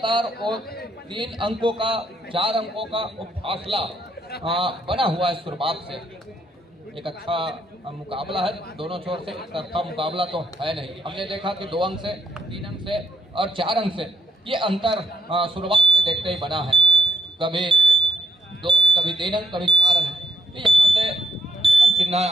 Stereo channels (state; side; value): normal; both; correlation 0.74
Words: वो 3 अंकों का, 4 अंकों का वो फासला बना हुआ है शुरुआत से। एक अच्छा मुकाबला है दोनों छोर से, एक तरफा मुकाबला तो है नहीं। हमने देखा कि 2 अंक से, 3 अंक से और 4 अंक से ये अंतर शुरुआत से देखते ही बना है, कभी 2, कभी 3 अंक, कभी 4 अंक। तो यहाँ से हेमंत सिन्हा